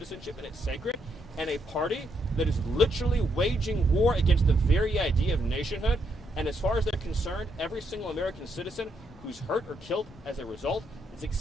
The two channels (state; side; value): normal; both; correlation 0.77